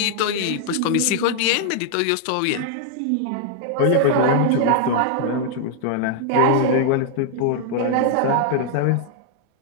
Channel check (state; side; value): different; both; correlation -0.01